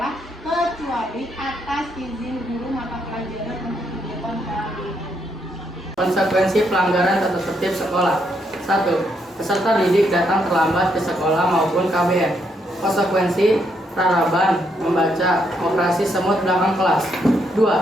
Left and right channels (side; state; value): both; normal; correlation 0.76